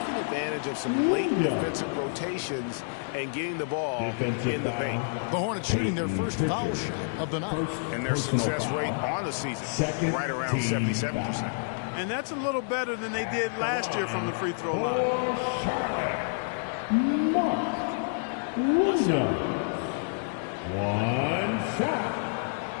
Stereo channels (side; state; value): right; silent; digital silence